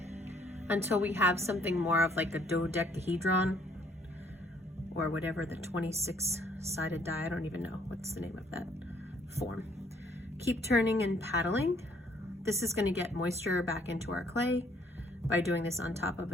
until we have something more of like a dodecahedron or whatever the 26-sided die, I don't even know what's the name of that form. Keep turning and paddling. This is going to get moisture back into our clay by doing this on top of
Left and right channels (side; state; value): both; normal; correlation 0.64